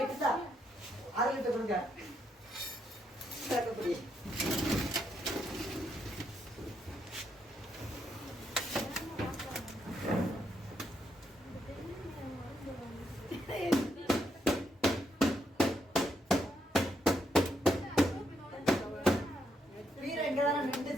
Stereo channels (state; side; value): normal; both; correlation 0.78